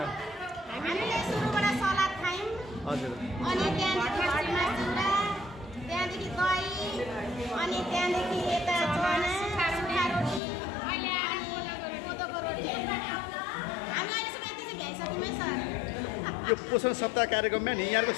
हजुर। यो पोषण सप्ताह कार्यक्रममा नि यहाँको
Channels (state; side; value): drops out; right; at 10.4 s